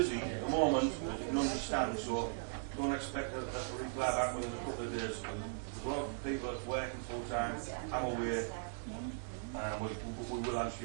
at the moment, as you can understand, so don't expect a reply back within a couple of days. There's a lot of people that's working full time. I'm aware. We will answer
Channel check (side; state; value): left; silent; digital silence